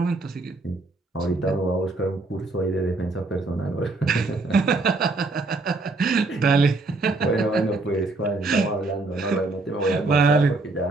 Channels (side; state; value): left; quieter; 3.3 dB